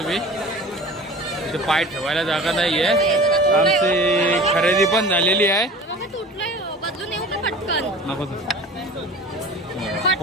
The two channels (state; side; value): normal; both; correlation 0.39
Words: इथे पाय ठेवायला जागा नाहीये. आमची खरेदी पण झालेली आहे. नको